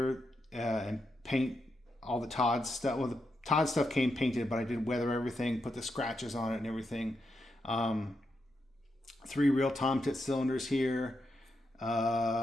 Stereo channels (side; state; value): both; normal; correlation 0.84